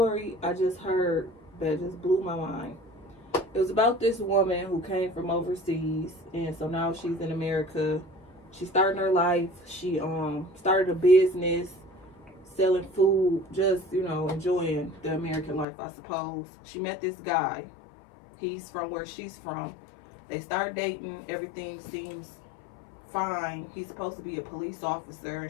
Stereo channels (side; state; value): right; drops out; at 15.7 s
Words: I just heard that just blew my mind. It was about this woman who came from overseas, and so now she's in America. She's starting her life. She started a business selling food, just, you know, enjoying the American life, I suppose. She met this guy. He's from where she's from. They start dating. Everything seems fine. He's supposed to be a police officer,